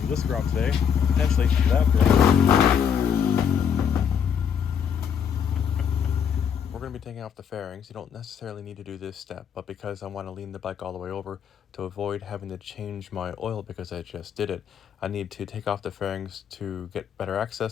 this Grom today, potentially that Grom. We're going to be taking off the fairings. You don't necessarily need to do this step, but because I want to lean the bike all the way over to avoid having to change my oil because I just did it, I need to take off the fairings to get better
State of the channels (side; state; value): right; quieter; 7.7 dB